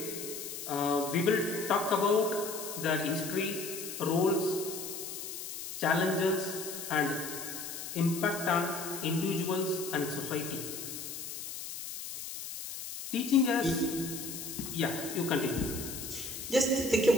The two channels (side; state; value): left; noise; hiss, 8 dB below the sound